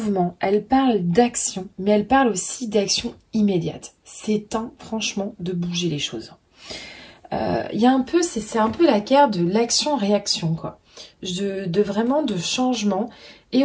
elle parle d'action, mais elle parle aussi d'action immédiate. C'est temps, franchement, de bouger les choses. Il y a un peu, c'est un peu la carte de l'action-réaction, quoi. Vraiment de changement et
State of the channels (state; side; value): identical; both; correlation 1.00